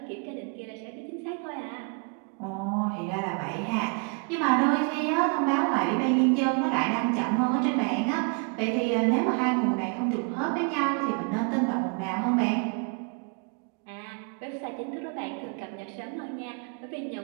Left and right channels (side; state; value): left; quieter; 36.7 dB